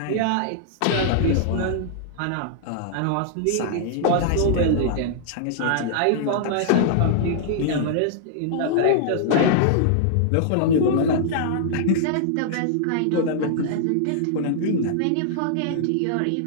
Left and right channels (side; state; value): both; different; correlation -0.01